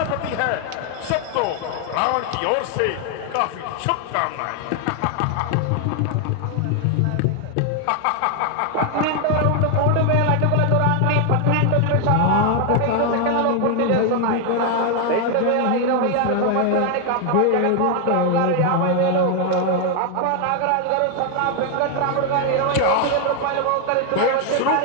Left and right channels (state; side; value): different; both; correlation 0.00